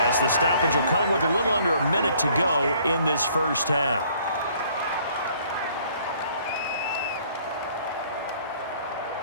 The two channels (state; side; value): inverted; both; correlation -0.60